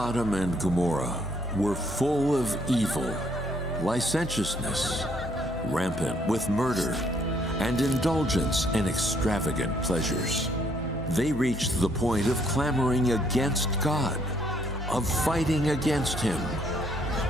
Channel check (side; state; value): both; normal; correlation 0.67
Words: and Gomorrah were full of evil, licentiousness, rampant with murder, and indulgence in extravagant pleasures. They reached the point of clamoring against God, of fighting against him,